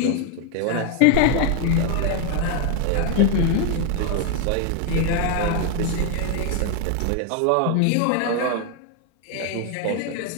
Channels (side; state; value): both; different; correlation 0.00